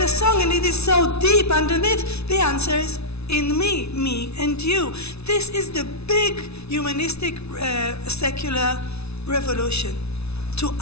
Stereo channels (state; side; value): late; right; 0.80 ms